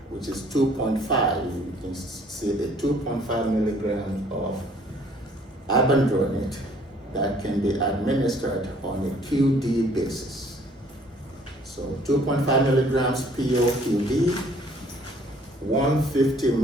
which is 2.5. You can see the 2.5 milligrams of ibandronate that can be administered on a QD basis. So 2.5 milligrams PO QD, 150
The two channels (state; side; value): normal; both; correlation 0.58